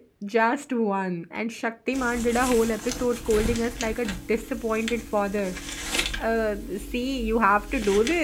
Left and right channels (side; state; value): both; identical; correlation 1.00